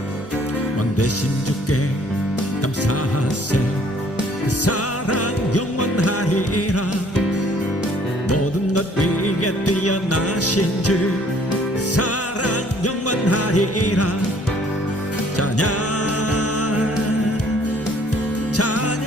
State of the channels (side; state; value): both; normal; correlation 0.59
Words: 대신 주께 감사하세. 그 사랑 영원하리라. 모든 것 위에 뛰어나신 주 사랑 영원하리라. 찬양